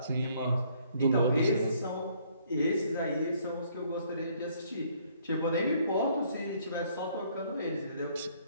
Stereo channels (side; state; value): both; inverted; correlation -0.64